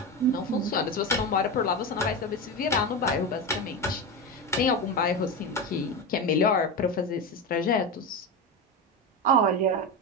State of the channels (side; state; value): both; normal; correlation 0.18